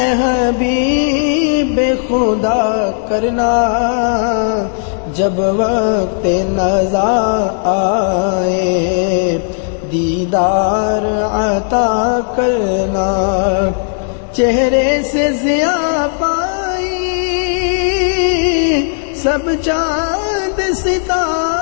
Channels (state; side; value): silent; right; digital silence